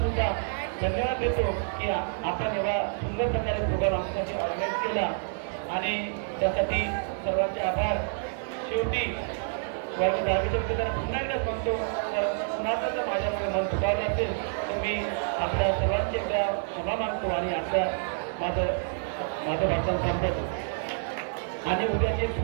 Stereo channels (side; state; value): left; silent; 57 dB below the other